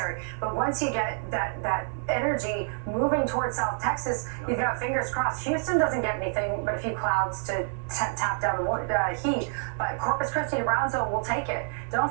But once you get that energy moving towards South Texas, you've got fingers crossed. Houston doesn't get anything but a few clouds to tap down the heat, but Corpus Christi to Brownsville will take it. Don't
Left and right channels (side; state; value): left; silent; 60 dB below the other